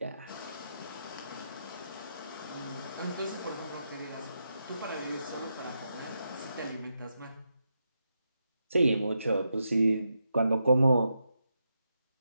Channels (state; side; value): inverted; both; correlation -0.85